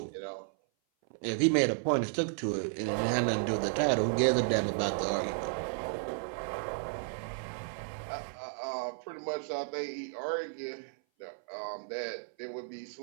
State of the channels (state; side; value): silent; left; 56 dB below the other